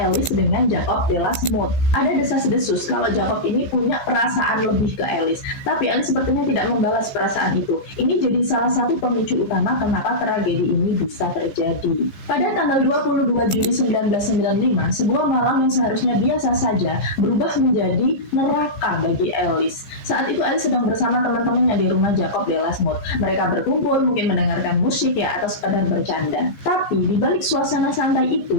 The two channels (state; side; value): late; right; 15 ms